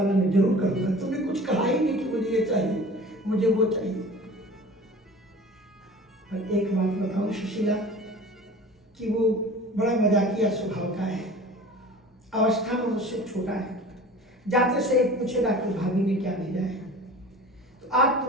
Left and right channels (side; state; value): both; normal; correlation 0.41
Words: मैं जरूर करूंगा। तुमने कुछ कहा ही नहीं कि मुझे ये चाहिए, मुझे वो चाहिए। पर एक बात बताऊं सुशीला, कि वो बड़ा मजाकिया स्वभाव का है, अवस्था में मुझसे छोटा है। जाते से एक पूछेगा कि भाभी ने क्या भेजा है, तो आज